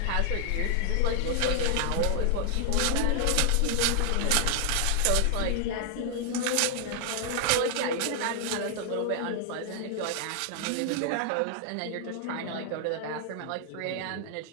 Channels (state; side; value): different; both; correlation 0.00